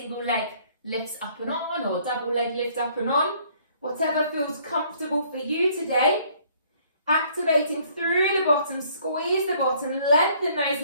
leg lifts up and on or double leg lift up and on. Whatever feels comfortable for you today. Activating through the bottom, squeeze the bottom, lengthen those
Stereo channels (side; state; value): both; inverted; correlation -0.61